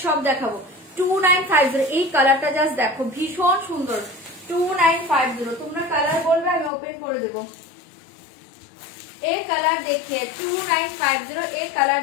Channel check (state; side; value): drops out; right; at 6.7 s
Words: সব দেখাবো। 2950 এই কালারটা জাস্ট দেখো, ভীষণ সুন্দর। 2950 তোমরা কালার বলবে, আমি ওপেন করে দেবো। এই কালার দেখিয়ে 2950, এই কালার